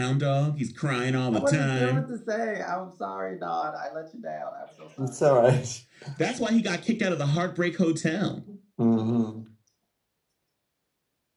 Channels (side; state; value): both; identical; correlation 1.00